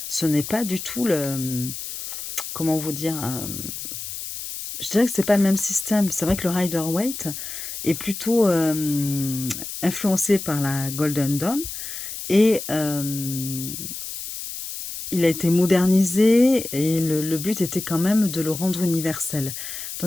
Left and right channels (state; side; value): noise; left; hiss, 8 dB below the sound